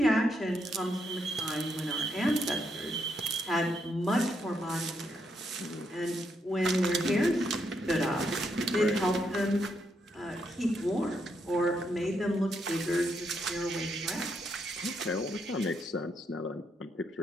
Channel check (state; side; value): normal; both; correlation 0.78